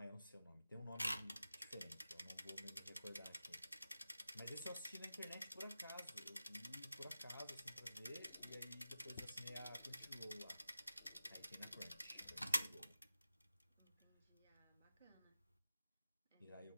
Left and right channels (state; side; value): inverted; both; correlation -0.93